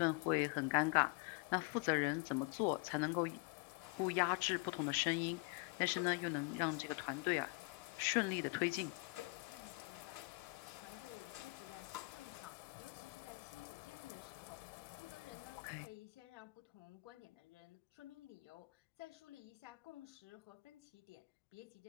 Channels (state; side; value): quieter; right; 28.7 dB